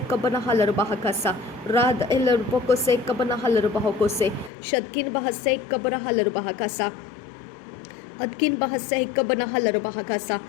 कबर हलर बहकसा राद एलर बको से कबर हलर बाहो को से शदकिन बहसे कबर हलर बहकसा अदकिन बहसे कबना हलर बहकसा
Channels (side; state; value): right; drops out; at 4.5 s